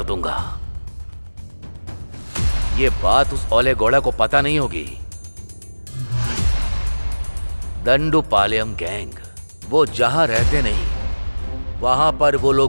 दूंगा। ये बात उस ओले गौड़ा को पता नहीं होगी। दंडूपालెం गैंग वो जहां रहते नहीं, वहां पर वो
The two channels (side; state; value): both; inverted; correlation -1.00